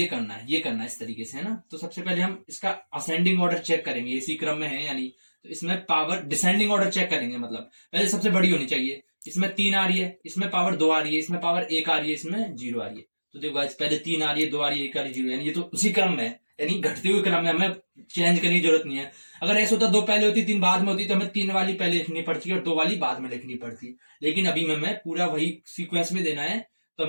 करना है, ये करना है इस तरीके से, है ना। तो सबसे पहले हम इसका असेंडिंग ऑर्डर चेक करेंगे, इसी क्रम में है यानी, तो इसमें पावर डिसेंडिंग ऑर्डर चेक करेंगे, मतलब पहले सबसे बड़ी होनी चाहिए, इसमें तीन आ रही है, इसमें पावर दो आ रही है, इसमें पावर एक आ रही है, इसमें जीरो आ रही है। तो देखो गाइस पहले तीन आ रही है, दो आ रही है, एक आ रही है, जीरो, यानी ये तो उसी क्रम में है, यानी घटते हुए क्रम में, हमें चेंज करने की जरूरत नहीं है। अगर ऐसा होता दो पहले होती तीन बाद में होती तो हमें तीन वाली पहले लिखनी पड़ती और दो वाली बाद में लिखनी पड़ती, लेकिन अभी हमें पूरा वही सीक्वेंस में देना है, तो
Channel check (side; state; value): both; inverted; correlation -1.00